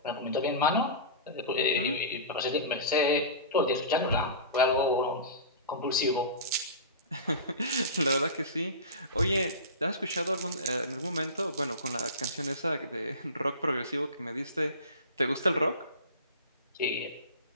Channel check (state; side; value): inverted; both; correlation -0.31